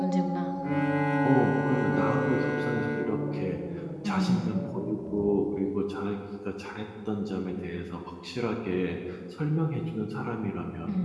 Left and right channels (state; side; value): identical; both; correlation 1.00